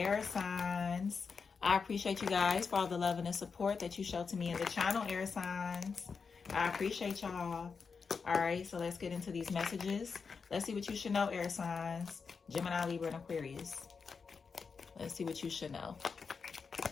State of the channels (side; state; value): right; quieter; 5.4 dB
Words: signs. I appreciate you guys for all the love and the support that you show to me in the channel, air signs. I appreciate y'all. All right, so let's get into these messages. Let's see what you should know, air signs. Gemini, Libra, and Aquarius. Let's see what you should know.